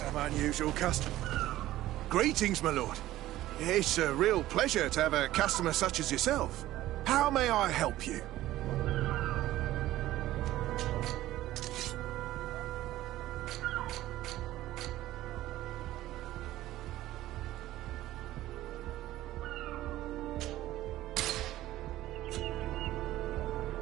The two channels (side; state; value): left; quieter; 15.1 dB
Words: unusual customers. Greetings, my lord. It's a real pleasure to have a customer such as yourself. How may I help you?